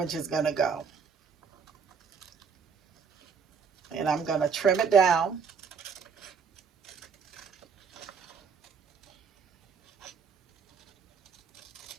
is going to go. And I'm going to trim it down.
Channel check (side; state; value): left; quieter; 6.0 dB